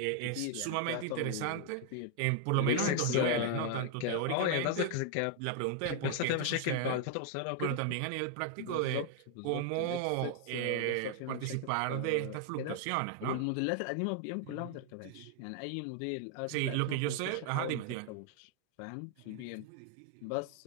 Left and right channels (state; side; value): different; both; correlation 0.00